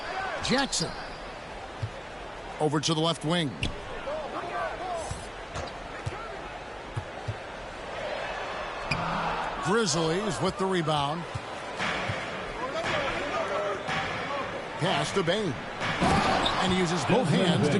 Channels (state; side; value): identical; both; correlation 1.00